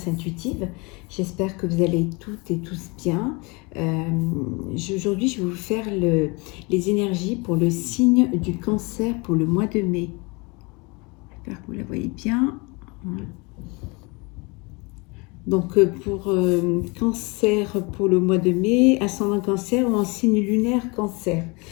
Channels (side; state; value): right; quieter; 28.0 dB